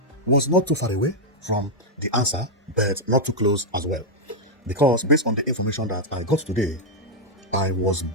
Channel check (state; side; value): normal; both; correlation -0.02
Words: was not too far away from the answer, but not too close as well. Because based on the information that I got today, I was